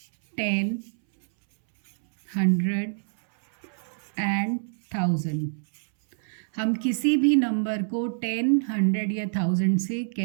10, 100 एंड 1000। हम किसी भी नंबर को 10, 100 या 1000 से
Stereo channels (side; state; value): left; silent; 61 dB below the other